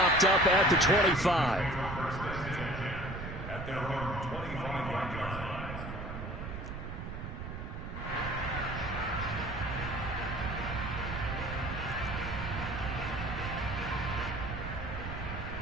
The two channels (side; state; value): right; noise; rumble, 7 dB below the sound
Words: up at the 25. At their own 25-yard line.